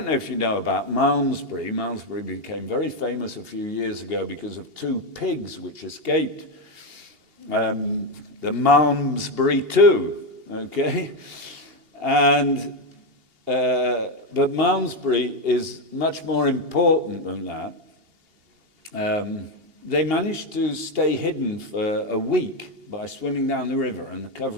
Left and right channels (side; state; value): left; late; 2.8 ms